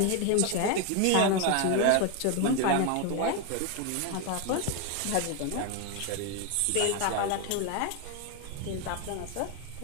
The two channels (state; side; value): different; both; correlation 0.01